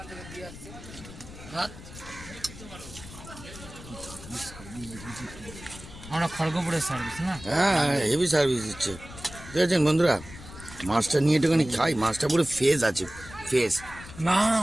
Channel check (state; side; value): noise; left; rumble, 15 dB below the sound